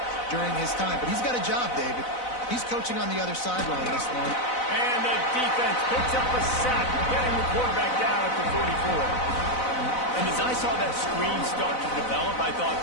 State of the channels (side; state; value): right; late; 4.0 ms